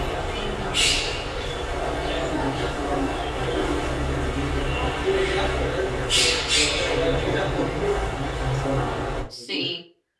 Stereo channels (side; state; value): both; identical; correlation 1.00